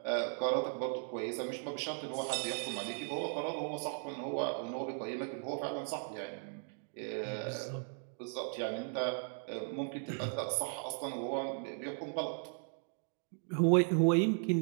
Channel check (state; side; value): silent; left; 53 dB below the other